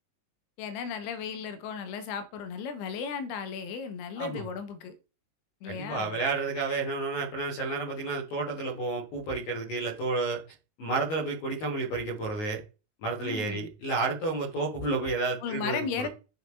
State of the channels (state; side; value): late; right; 19 ms